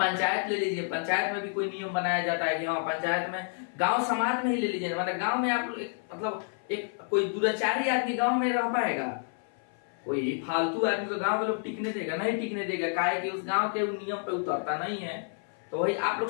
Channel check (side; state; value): right; silent; 57 dB below the other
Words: ले लीजिए, पंचायत में भी कोई नियम बनाया जाता है कि हाँ पंचायत में, गांव समाज में ही ले लीजिए, मतलब गांव में आप मतलब एक कोई दुराचारी आदमी गांव में रह पाएगा? कोई फालतू आदमी को गांव के लोग टिकने देगा? नहीं टिकने देगा। काहे कि उस गांव के नियम पे उतरता नहीं है। तो वही आप लोग